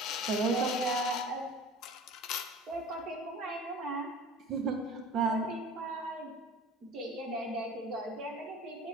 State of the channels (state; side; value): normal; both; correlation 0.41